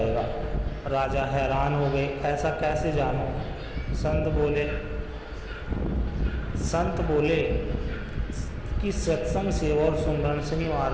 राजा हैरान हो गए, ऐसा कैसे जानूं? संत बोले कि सत्संग, सेवा और सुमरन सही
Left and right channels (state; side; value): identical; both; correlation 1.00